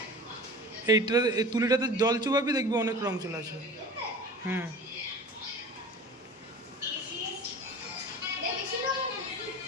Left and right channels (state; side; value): normal; both; correlation 0.38